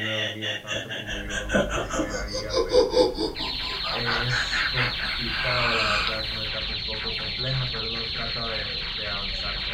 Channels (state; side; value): identical; both; correlation 1.00